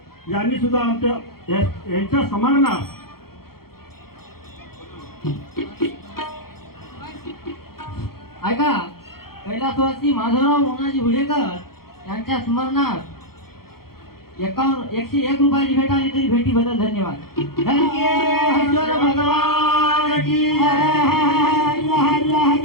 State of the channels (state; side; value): late; right; 0.94 ms